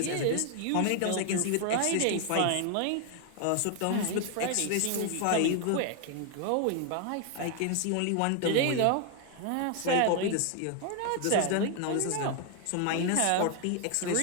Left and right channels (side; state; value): both; different; correlation 0.01